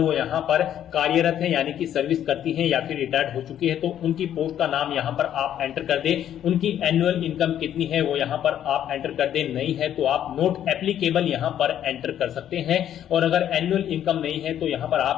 यहाँ पर कार्यरत है यानी कि सर्विस करती हैं या फिर रिटायर्ड हो चुकी है तो उनकी पोस्ट का नाम यहाँ पर आप एंटर कर दें। उनकी एनुअल इनकम कितनी है वो यहाँ पर आप एंटर कर दें। नहीं है तो आप नॉट एप्लीकेबल यहाँ पर एंटर कर सकते हैं। और अगर एनुअल इनकम नहीं है तो यहाँ पर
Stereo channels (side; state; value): right; quieter; 10.5 dB